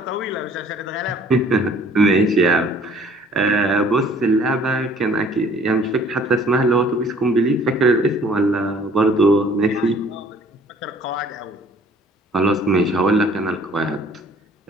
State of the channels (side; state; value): both; normal; correlation 0.55